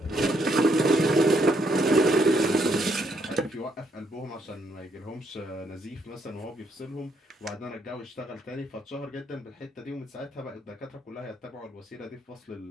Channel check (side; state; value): both; normal; correlation 0.73